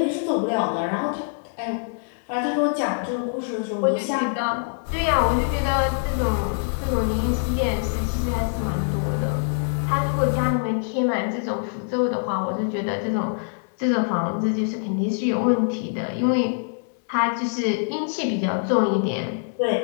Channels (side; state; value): right; silent; 62 dB below the other